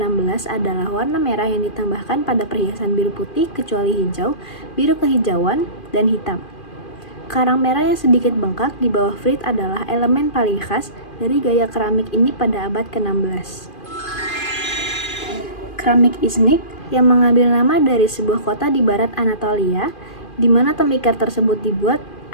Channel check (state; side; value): late; right; 2.4 ms